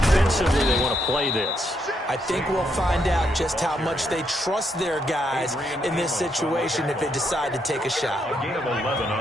they want to play this. I think we'll find out just how much they trust their guys in this situation if they decide to take a shot. A gain of 11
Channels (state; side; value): normal; both; correlation 0.77